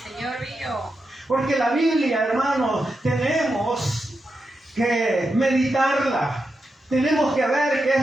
Señor mío. Porque la Biblia, hermanos, tenemos que meditarla. Tenemos que ver qué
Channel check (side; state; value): both; normal; correlation 0.87